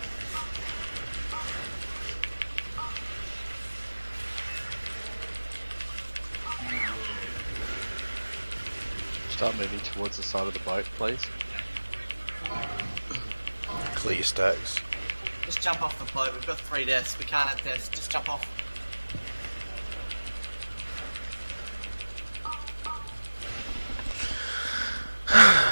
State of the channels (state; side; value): inverted; both; correlation -1.00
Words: Start moving towards the side of the boat, please. Clear your stacks. Just jump off the boat. We've got 3 deaths. We can't have deaths. Just jump off.